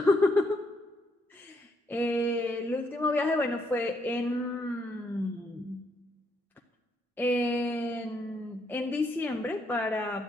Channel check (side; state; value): both; normal; correlation 0.75